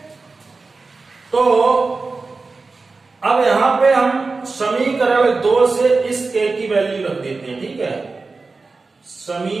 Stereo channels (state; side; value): quieter; left; 3.9 dB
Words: तो अब यहां पे हम समीकरण 2 से इस k की वैल्यू रख देते हैं। ठीक है,